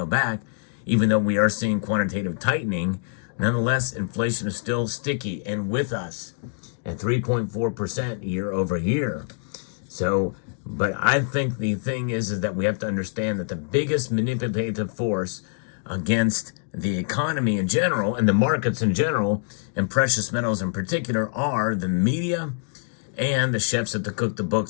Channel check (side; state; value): right; silent; digital silence